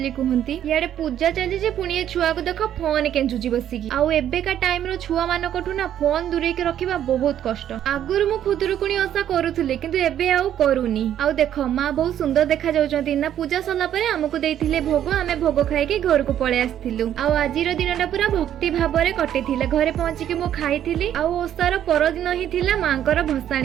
कहंती। याडे पूजा चली जे पुणी ए छुआ को देख फोन केंचुची बसिकी। आउ एबेका टाइम रो छुआ मानकठु ना फोन दूरे के रखिबा बहुत कष्ट। आगुरु मु खुदुरुकुणी ओसा करूथुले किंतु एबे आउ करूनी। आउ देख मां बहुत सुंदर देखा जाउचंती ना। पूजा सरला परे हमकु देइथिले भोग, आमे भोग खाइके घर को पळे आस्थिलु। आउ आजिर दिनटा पूरा भक्ति भाबरे कटिथिला। घरे पहुंची के मु खाइथिली। आउ ओसार परदिन ही थिला मांकर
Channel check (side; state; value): left; quieter; 10.7 dB